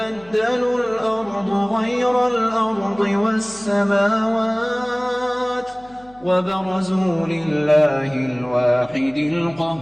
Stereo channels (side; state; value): left; noise; hum, 26 dB below the sound